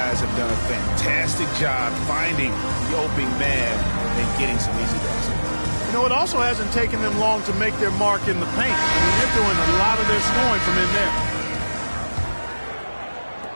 have done a fantastic job finding the opening man and getting some easy baskets. You know, it also hasn't taken them long to make their mark in the paint. I mean, they're doing a lot of their scoring from in there.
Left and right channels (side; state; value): both; inverted; correlation -1.00